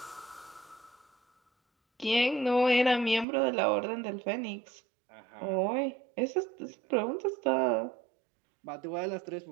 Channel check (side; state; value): left; drops out; at 3.2 s